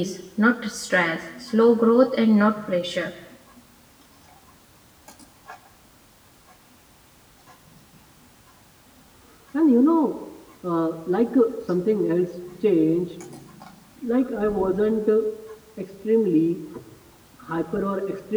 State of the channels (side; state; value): both; identical; correlation 1.00